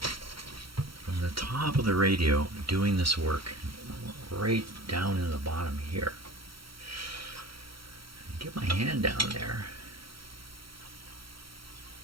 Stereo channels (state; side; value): late; left; 0.74 ms